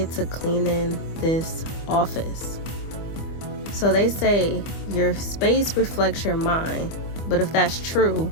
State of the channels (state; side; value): late; right; 25 ms